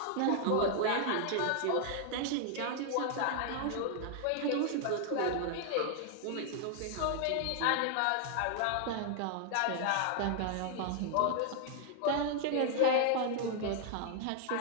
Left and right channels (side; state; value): both; different; correlation 0.00